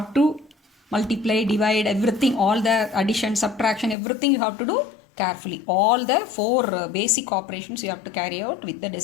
to multiply, divide, everything, all the addition, subtraction, everything you have to do carefully. All the 4 basic operations you have to carry out with the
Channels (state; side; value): drops out; right; at 4.0 s